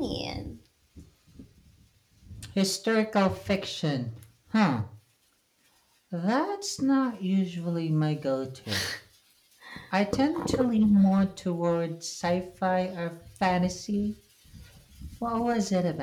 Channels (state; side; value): identical; both; correlation 1.00